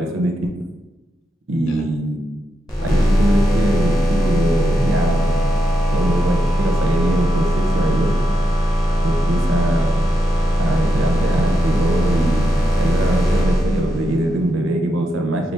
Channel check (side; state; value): both; normal; correlation 0.85